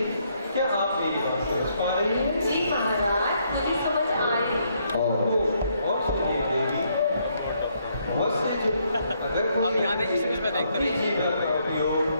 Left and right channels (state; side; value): inverted; both; correlation -0.73